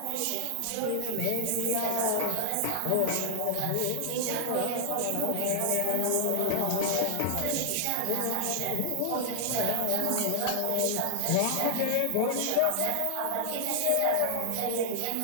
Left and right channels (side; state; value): both; different; correlation -0.01